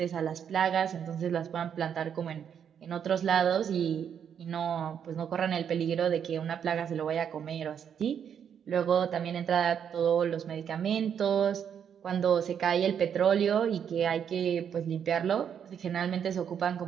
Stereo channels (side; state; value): left; quieter; 8.2 dB